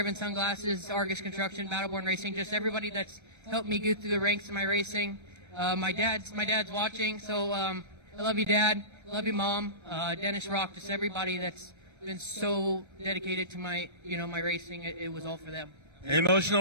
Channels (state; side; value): late; left; 1.3 ms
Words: Sunglasses, Argus Construction, Battleborn Racing, just everybody that's helped me go through the ranks in my racing. My dad's watching, so I love you, Dad. Love you, Mom. Dennis Rock, just everybody that's been so dedicated to my, my racing. It was all for them. An